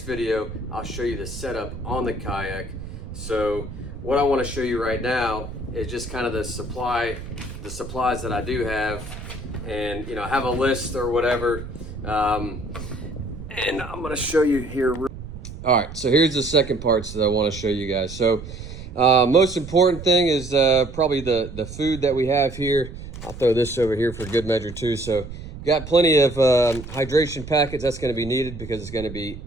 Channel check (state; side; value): noise; right; rumble, 11 dB below the sound